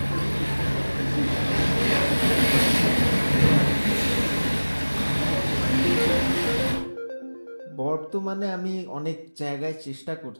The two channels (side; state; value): both; inverted; correlation -1.00